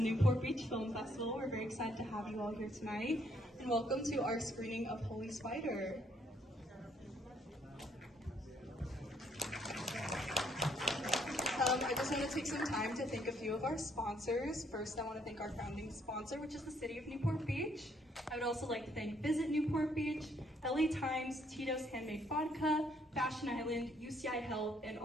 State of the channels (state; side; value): normal; both; correlation 0.68